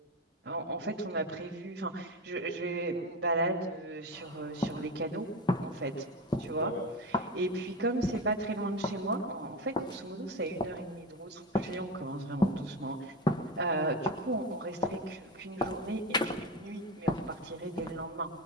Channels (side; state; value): both; normal; correlation 0.22